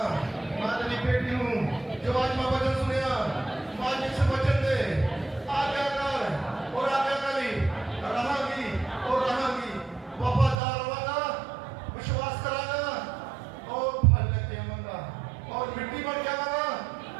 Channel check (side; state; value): left; drops out; at 10.6 s